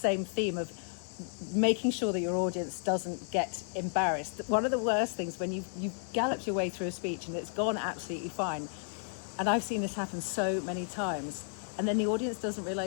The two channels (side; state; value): right; silent; 56 dB below the other